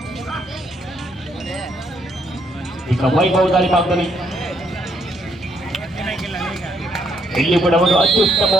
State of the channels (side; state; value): both; normal; correlation 0.73